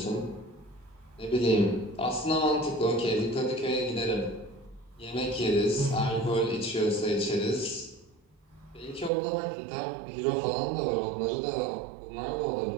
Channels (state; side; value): drops out; left; at 9.1 s